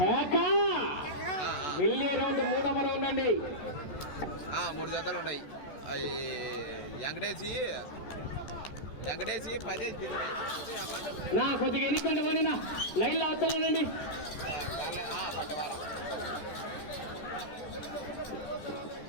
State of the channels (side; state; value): right; late; 14 ms